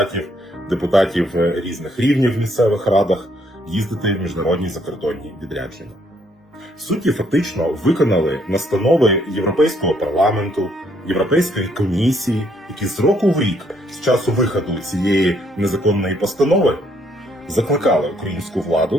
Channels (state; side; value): normal; both; correlation 0.69